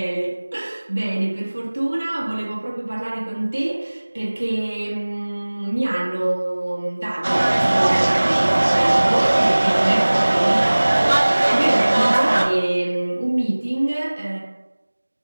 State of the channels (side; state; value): both; inverted; correlation -1.00